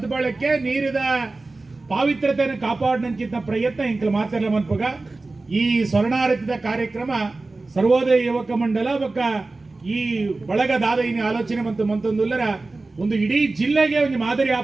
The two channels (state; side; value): quieter; left; 3.3 dB